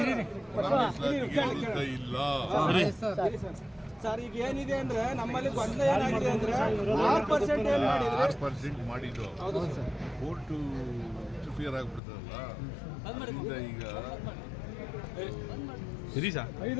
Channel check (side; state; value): right; drops out; at 12.0 s